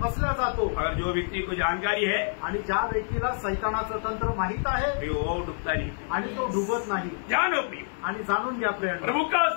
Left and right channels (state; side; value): silent; right; digital silence